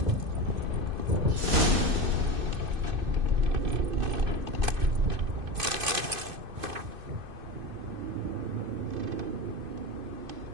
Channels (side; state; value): left; late; 2.5 ms